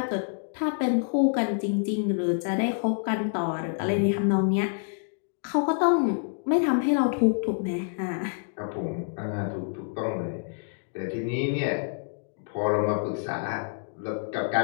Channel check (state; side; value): silent; right; digital silence